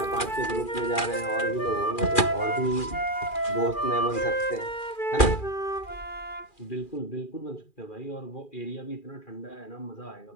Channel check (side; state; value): right; late; 2.4 ms